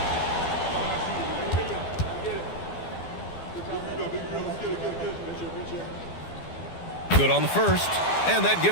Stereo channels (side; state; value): right; late; 12 ms